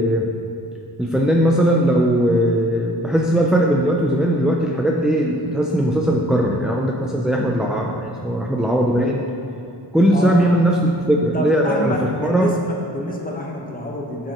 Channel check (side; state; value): both; normal; correlation 0.60